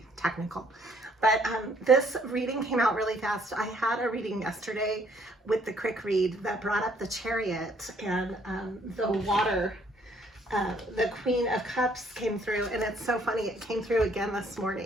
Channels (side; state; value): both; normal; correlation 0.64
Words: technical. But this reading came out really fast. I had a reading yesterday with the quick read that brought up the chariot and the water. The Queen of Cups came through, and it's so funny. It came through again this